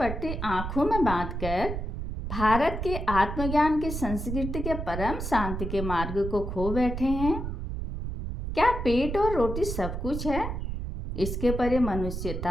आँखों में बांधकर भारत के आत्मज्ञान की संस्कृति के परम शांति के मार्ग को खो बैठे हैं। क्या पेट और रोटी सब कुछ है? इसके परे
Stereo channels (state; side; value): noise; right; rumble, 5 dB below the sound